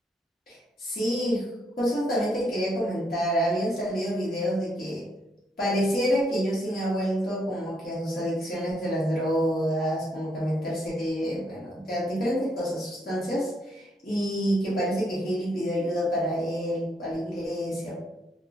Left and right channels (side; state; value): both; normal; correlation 0.74